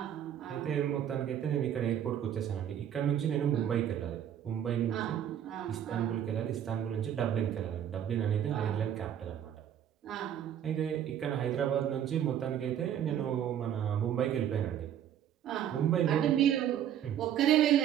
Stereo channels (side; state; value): left; quieter; 10.0 dB